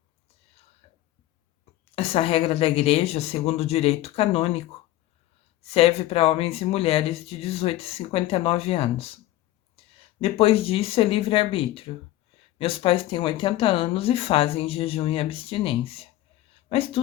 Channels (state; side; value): quieter; right; 15.1 dB